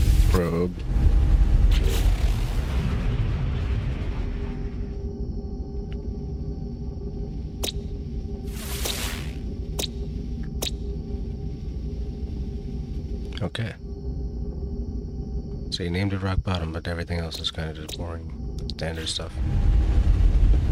Probe. Okay. So you named it rock bottom, but everything else is kind of just boring, standard stuff.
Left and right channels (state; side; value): identical; both; correlation 1.00